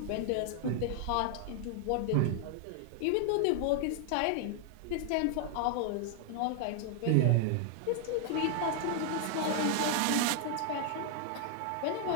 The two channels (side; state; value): both; different; correlation 0.00